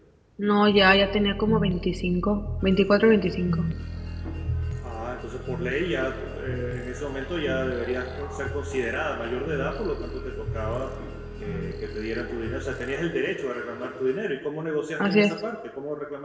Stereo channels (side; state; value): both; identical; correlation 1.00